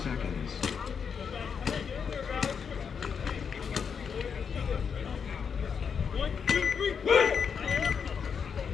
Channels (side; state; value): right; quieter; 6.6 dB